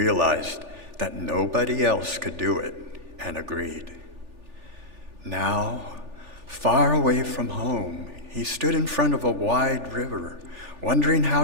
that nobody else could do it and agreed. Now, far away from home, he stood in front of a wide river, wondering how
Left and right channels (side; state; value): left; late; 3.4 ms